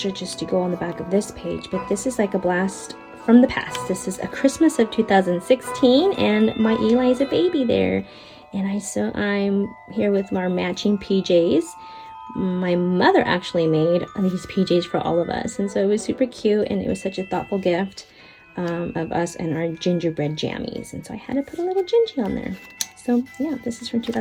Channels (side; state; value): both; identical; correlation 1.00